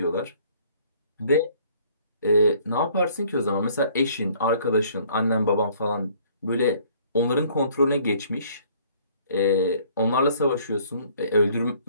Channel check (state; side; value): inverted; both; correlation -0.59